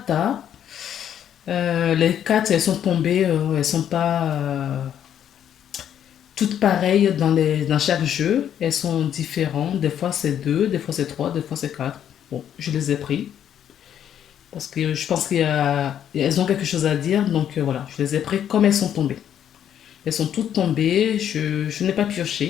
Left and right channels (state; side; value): quieter; right; 9.8 dB